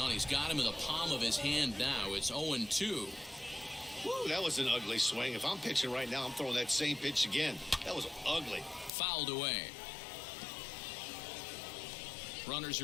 he's got him in the palm of his hand now. It's 0-2. Woo, that was an ugly swing. If I'm pitching right now, I'm throwing that same pitch again. That was ugly. Fouled away. Runners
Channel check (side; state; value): right; drops out; at 8.9 s